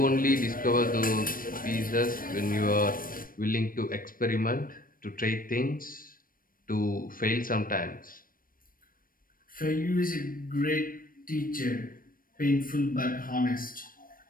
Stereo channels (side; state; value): right; late; 0.41 ms